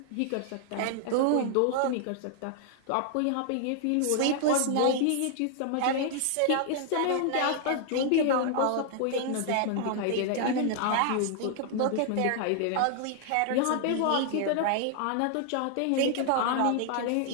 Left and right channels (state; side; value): different; both; correlation 0.00